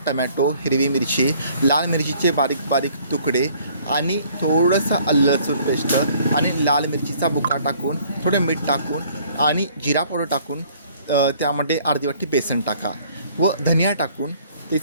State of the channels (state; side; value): inverted; both; correlation -0.58